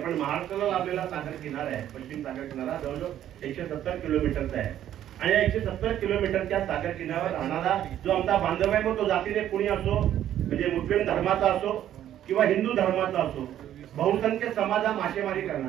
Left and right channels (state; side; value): quieter; left; 11.4 dB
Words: महाराष्ट्राला लाभलेला सागर किनारा आहे. पश्चिम सागर किनारा जवळजवळ 170 किलोमीटरचा आहे. आणि या 170 किलोमीटरच्या सागर किनाऱ्यावर राहणारा जो आमचा बांधव आहे, मग तो जातीने कुणी असो, म्हणजे मुस्लिम धर्माचा असो किंवा हिंदू धर्माचा असो, बहुसंख्य समाज हा मासेमारी